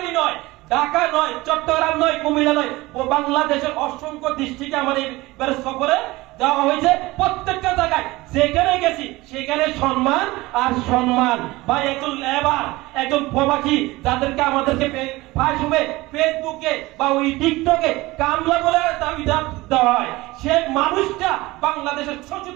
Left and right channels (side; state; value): left; quieter; 20.3 dB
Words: নয়, ঢাকা নয়, চট্টগ্রাম নয়, কুমিল্লা নয়, বাংলাদেশের অসংখ্য ডিস্ট্রিক্টে আমার এইবার সফরে যাওয়া হয়েছে। প্রত্যেকটা জায়গায় যেখানে গেছি সেখানে সম্মান আর সম্মান। বা একজন লেবার, একজন প্রবাসী যাদেরকে আমাদেরকে ফেসবুকে বা ওই টিকটকে কামলা বলে দাবি দেওয়া হয়, সে মানুষটা বাংলাদেশের